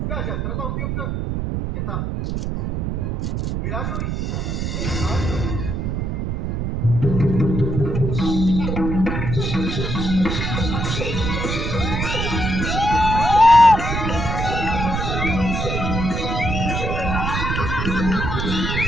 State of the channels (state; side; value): noise; right; rumble, 2 dB below the sound